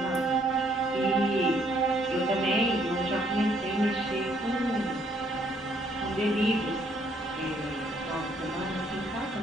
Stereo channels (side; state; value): both; normal; correlation 0.67